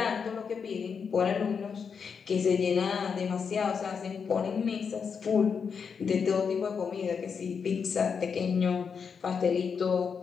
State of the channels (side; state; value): right; quieter; 6.2 dB